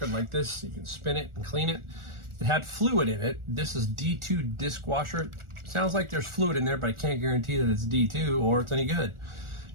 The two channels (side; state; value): left; late; 1.4 ms